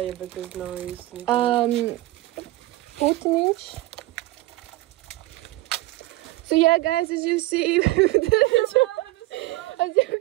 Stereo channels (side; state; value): left; quieter; 18.2 dB